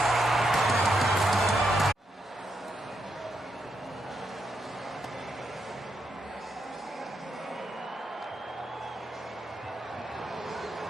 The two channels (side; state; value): both; normal; correlation 0.81